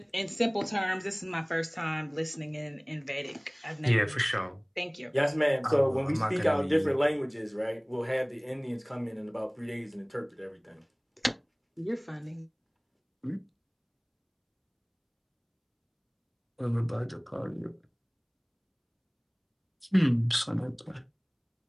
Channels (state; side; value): identical; both; correlation 1.00